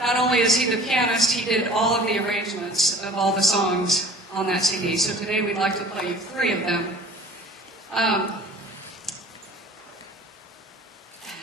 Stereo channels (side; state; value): both; normal; correlation 0.46